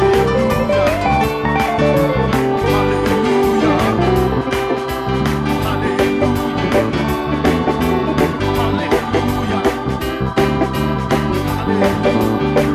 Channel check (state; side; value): identical; both; correlation 1.00